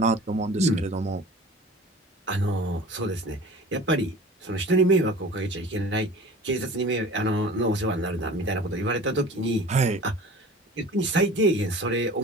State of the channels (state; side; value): normal; both; correlation 0.42